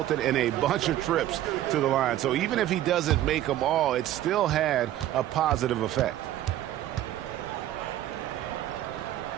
in a bunch of trips to the line. So even if he doesn't make them all, it still had a positive effect.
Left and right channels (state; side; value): quieter; left; 13.1 dB